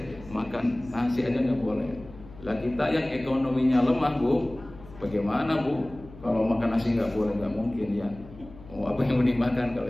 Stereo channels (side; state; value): left; noise; hum, 19 dB below the sound